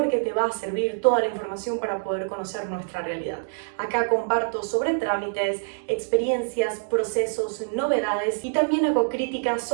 te va a servir toda la información para poder conocer nuestra realidad. Acá comparto sobre trámites, experiencias, procesos, novedades y también hago críticas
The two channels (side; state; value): left; silent; digital silence